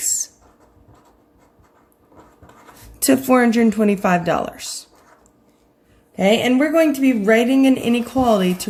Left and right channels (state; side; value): identical; both; correlation 1.00